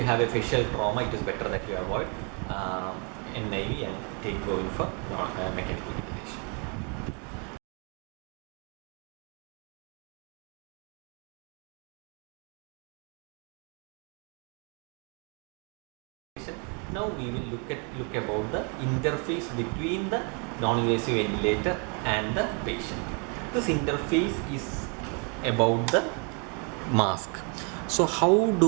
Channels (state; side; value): quieter; left; 35.9 dB